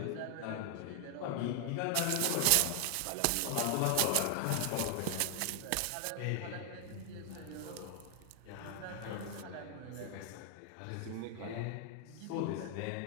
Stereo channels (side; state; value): both; different; correlation 0.00